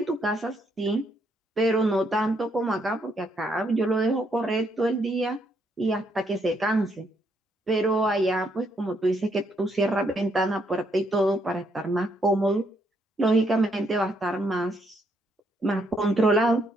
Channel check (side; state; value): both; normal; correlation 0.73